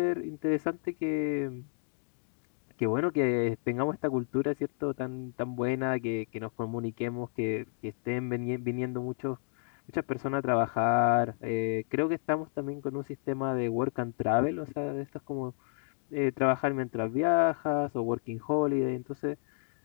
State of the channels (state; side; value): silent; right; digital silence